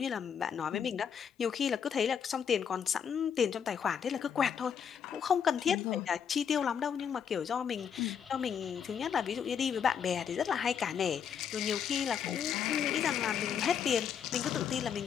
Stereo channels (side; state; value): right; quieter; 7.7 dB